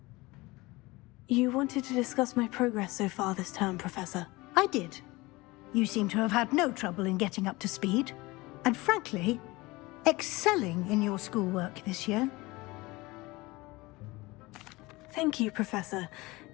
You wanted to discuss my progress so far this term, Professor. I did. You seem to have had no trouble in getting up to speed. And frankly, excelling in your schoolwork this year. Thank you, Professor.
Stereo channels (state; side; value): quieter; right; 21.9 dB